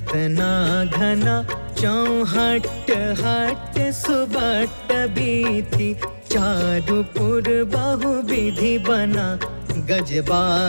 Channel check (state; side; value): inverted; both; correlation -1.00